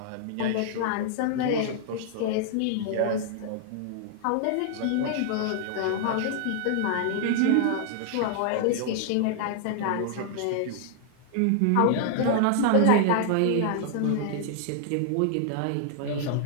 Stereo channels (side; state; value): both; different; correlation -0.01